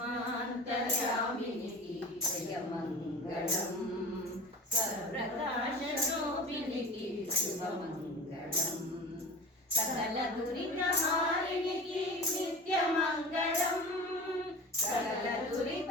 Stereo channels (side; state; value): both; normal; correlation 0.37